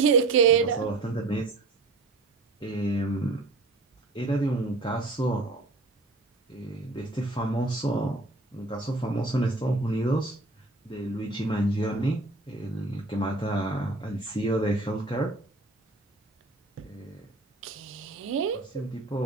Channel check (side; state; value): left; quieter; 3.1 dB